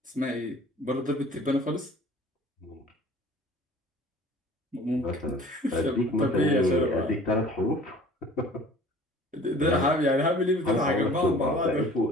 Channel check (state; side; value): normal; both; correlation 0.48